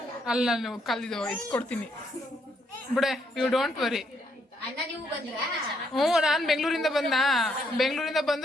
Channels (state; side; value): normal; both; correlation 0.73